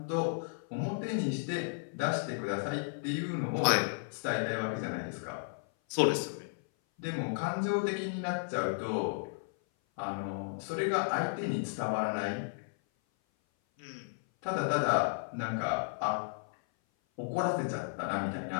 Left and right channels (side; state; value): right; silent; 55 dB below the other